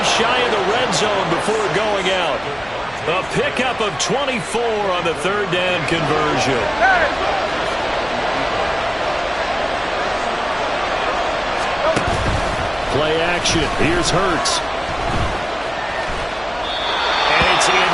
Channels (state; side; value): noise; left; hum, 22 dB below the sound